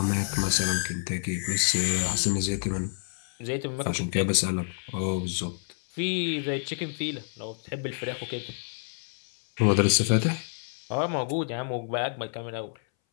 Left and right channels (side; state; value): right; silent; 59 dB below the other